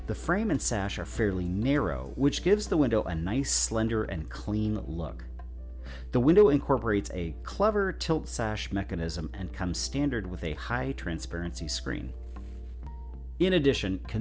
The frame and sash are fairly narrow, which gives the window a nice, slender, and clean look. The window incorporates a clever tilt sash mechanism and comes standard with a high transparency screen. In addition,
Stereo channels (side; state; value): both; identical; correlation 1.00